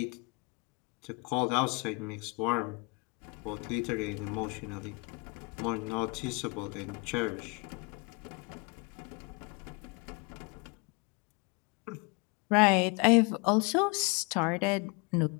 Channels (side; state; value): right; quieter; 29.1 dB